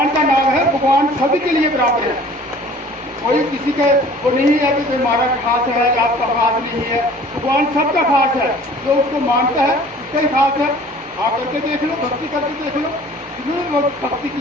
का नाम है, भगवान सभी के लिए बराबर है। कोई किसी का वो नहीं है कि हमारा खास है या आपका खास नहीं है। भगवान सबका खास है, जो उसको मानता है उसका ही खास है। आप करके देख लो, भक्ति करके देख लो, जिन्होंने लोग भक्ति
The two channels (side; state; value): both; normal; correlation 0.49